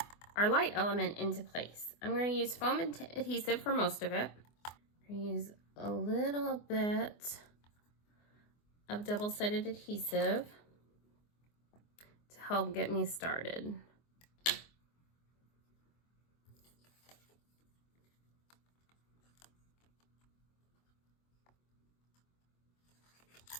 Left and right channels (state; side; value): late; right; 24 ms